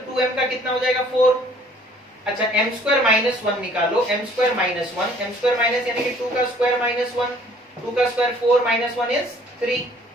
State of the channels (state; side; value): normal; both; correlation 0.57